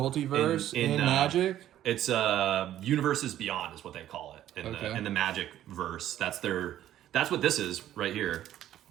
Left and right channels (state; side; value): quieter; left; 12.3 dB